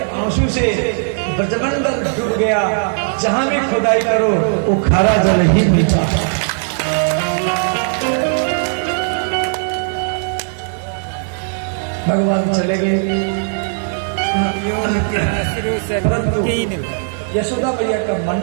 आंसू से ब्रजमंडल डूब गया। जहां भी खुदाई करो वो खारा जल ही मिलता। भगवान चले गए, परंतु यशोदा मैया का मन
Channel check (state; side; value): silent; left; 61 dB below the other